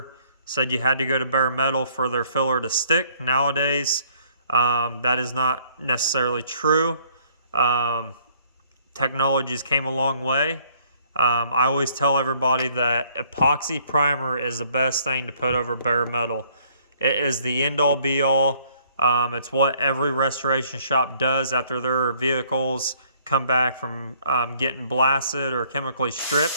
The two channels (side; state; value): both; inverted; correlation -0.63